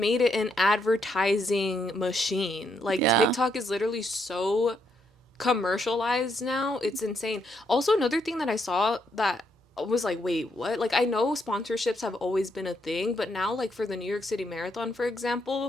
it an advertising machine. Like yeah. TikTok is literally so commercialized now. It's insane. Also, another thing that I saw that was like, wait, what? Like, I know sponsorships have always been a thing, but now, like, for the New York City Marathon, for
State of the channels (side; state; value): both; normal; correlation 0.76